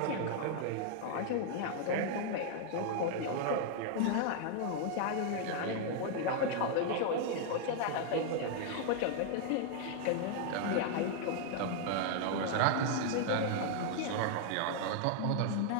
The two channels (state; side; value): different; both; correlation 0.00